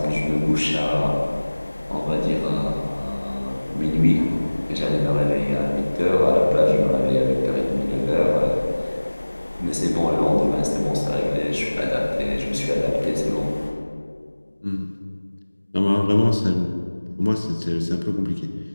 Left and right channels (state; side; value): inverted; both; correlation -1.00